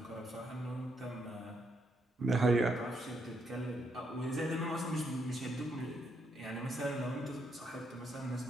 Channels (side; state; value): both; normal; correlation 0.76